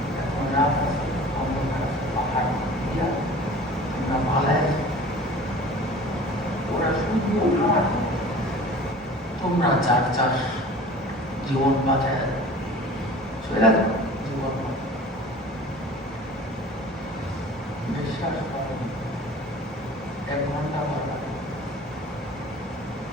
এখন রাত আছে, পাহাড় দিয়া আমরা পালায়, ওরা শুধু তোমরা চার চার জীবন বাঁচায় চলে গেল। জীবন বিশ্বাস করেন 1 ঘন্টা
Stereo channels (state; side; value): normal; both; correlation 0.43